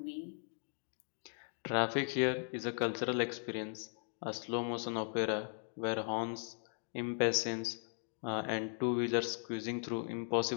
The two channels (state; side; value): silent; right; 52 dB below the other